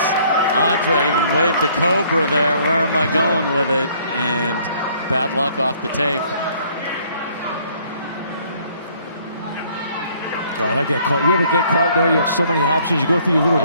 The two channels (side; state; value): both; inverted; correlation -0.62